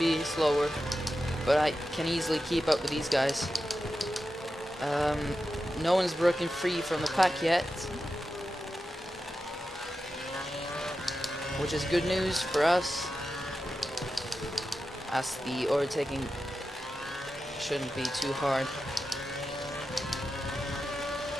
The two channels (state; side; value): normal; both; correlation 0.91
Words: slower, but I can easily keep up with these guys. No one's broken free from the pack yet, which is good news for us, as the overtaking shouldn't be too hard.